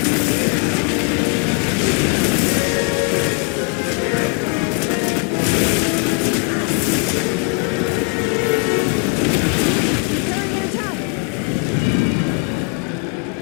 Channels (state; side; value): quieter; right; 35.2 dB